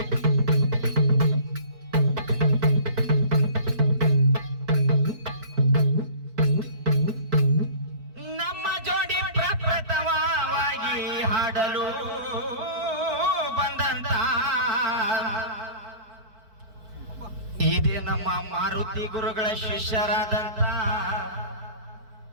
ನಮ್ಮ ಮಾರುತಿ ಗುರುಗಳ ಶಿಷ್ಯರಾದಂತ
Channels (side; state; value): left; late; 4.6 ms